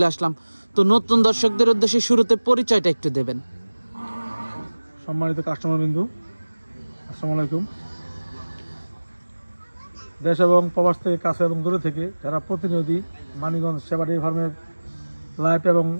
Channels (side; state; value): both; inverted; correlation -1.00